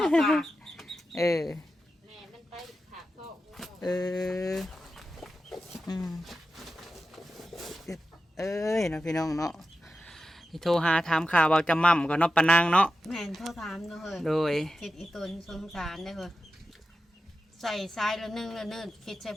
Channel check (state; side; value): normal; both; correlation 0.91